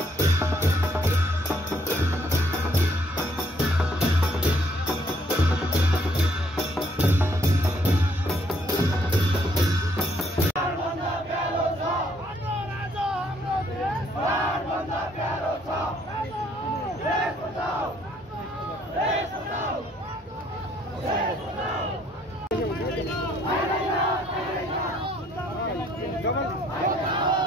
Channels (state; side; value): normal; both; correlation 0.66